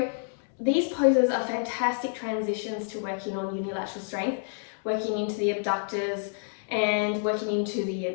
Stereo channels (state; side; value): silent; right; digital silence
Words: these poses are fantastic transitions to working on unilateral strength, working into the abductors and working into the